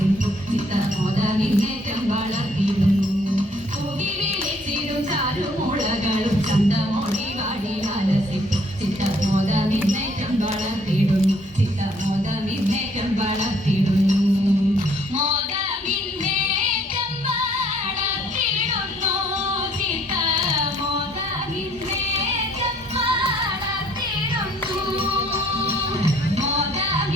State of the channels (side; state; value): both; normal; correlation 0.62